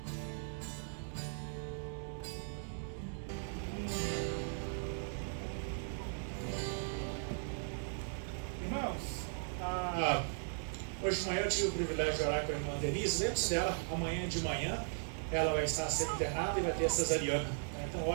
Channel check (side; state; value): left; silent; digital silence